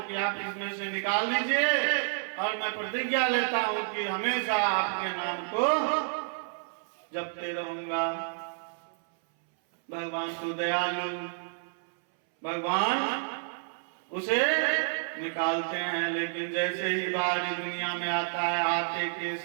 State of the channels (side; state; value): left; silent; 58 dB below the other